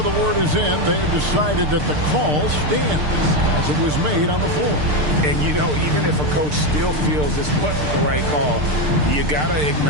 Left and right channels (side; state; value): left; late; 6.7 ms